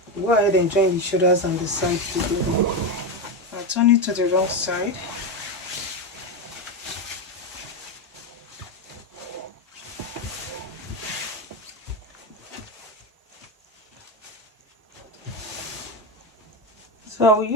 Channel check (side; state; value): both; normal; correlation 0.13